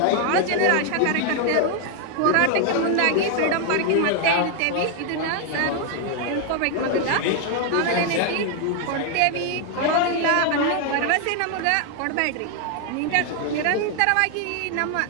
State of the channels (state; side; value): different; both; correlation 0.01